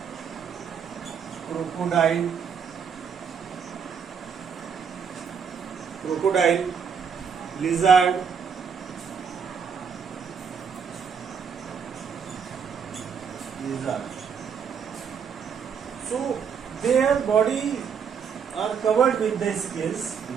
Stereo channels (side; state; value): left; quieter; 6.8 dB